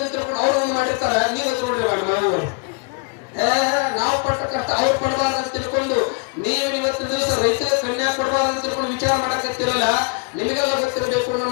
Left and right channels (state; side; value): quieter; right; 33.8 dB